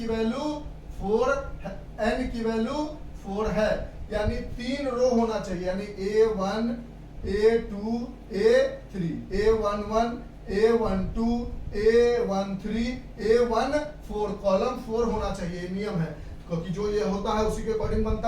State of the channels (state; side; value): identical; both; correlation 1.00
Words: वैल्यू 4 है, n की वैल्यू 4 है, यानी 3 रो होना चाहिए, यानी A1 A2 A3 A11 A12 A13 A14, column 4 होना चाहिए, नियम है, क्योंकि जो ये होता है उसी के अकॉर्डिंग